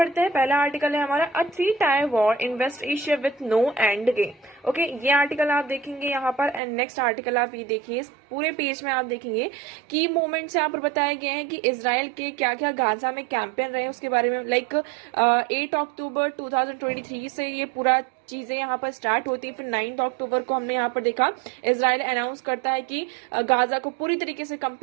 हैं. पहला आर्टिकल है हमारा a 3-tier war in West Asia with no end game. Okay ये आर्टिकल आप देखेंगे यहाँ पर. एंड नेक्स्ट आर्टिकल आप ये देखिए, इस पूरे पेज में आप देखेंगे की मोमेंट्स यहाँ पर बताए गए हैं कि इजराइल के क्या क्या गाजा में कैंपेन रहे उसके बारे में. लाइक 8 अक्टूबर 2023 से ये पूरा चीजें यहाँ पर स्टार्ट होती है. फिर 9 अक्टूबर को हमने यहाँ पर देखा इजराइल अनाउंस करता है कि गाजा को पूरी तरीके से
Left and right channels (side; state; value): left; drops out; at 6.6 s